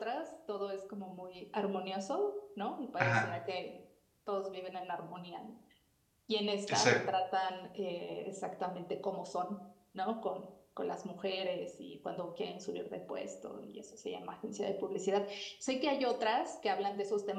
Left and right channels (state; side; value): identical; both; correlation 1.00